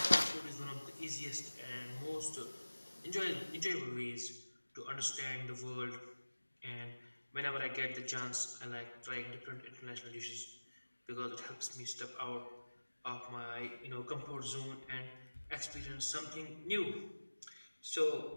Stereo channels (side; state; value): both; inverted; correlation -1.00